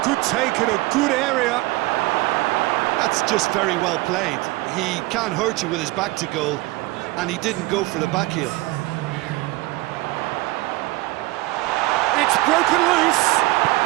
good take in a good area. That's just very well played. He can't hurt you with his back to goal, and he didn't go for the back heel. It's broken loose.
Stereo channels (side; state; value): left; quieter; 20.7 dB